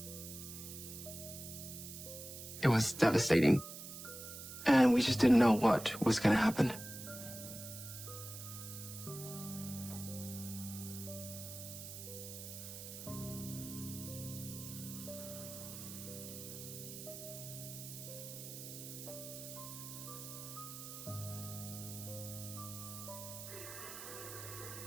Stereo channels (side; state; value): right; noise; hiss, 10 dB below the sound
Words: It was devastating. And we just didn't know what was going to happen.